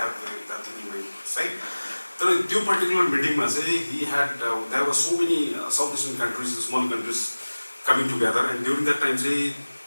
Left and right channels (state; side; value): inverted; both; correlation -1.00